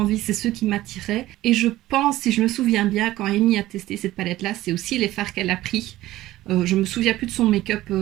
c'est ceux qui m'attiraient. Et je pense, si je me souviens bien, quand Amy a testé cette palette-là, c'est aussi les fards qu'elle a pris. Je me souviens plus de son make-up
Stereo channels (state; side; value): quieter; left; 15.8 dB